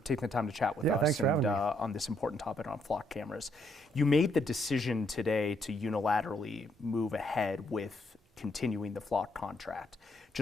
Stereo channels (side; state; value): both; normal; correlation 0.73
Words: taking the time to chat with us thanks for having me. On this important topic on flock cameras. You made the decision today to unilaterally move ahead with continuing the flock contract.